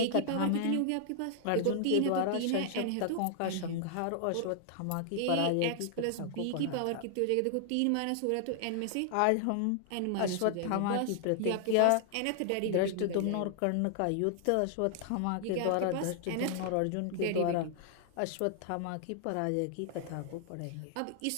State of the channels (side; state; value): both; different; correlation 0.00